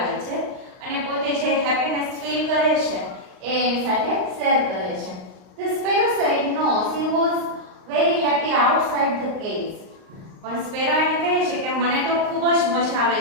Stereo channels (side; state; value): left; late; 38 ms